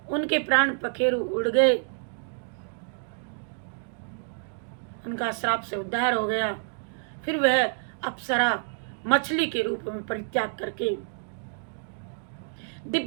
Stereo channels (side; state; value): left; silent; digital silence